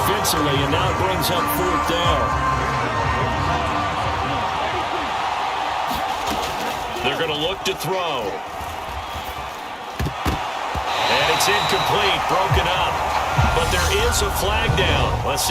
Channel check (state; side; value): identical; both; correlation 1.00